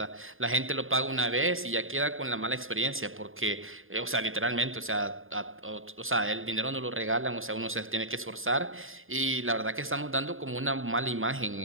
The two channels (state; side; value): late; left; 0.59 ms